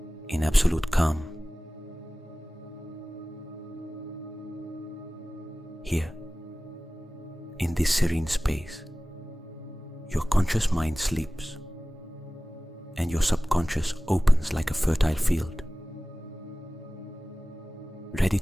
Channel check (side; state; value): both; normal; correlation 0.97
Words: in absolute calm. Here, in this serene space, your conscious mind sleeps and your subconscious opens like a fertile field, ready